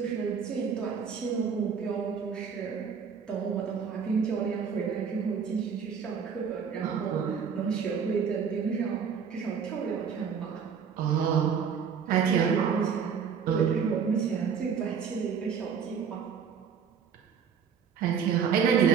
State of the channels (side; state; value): left; quieter; 6.7 dB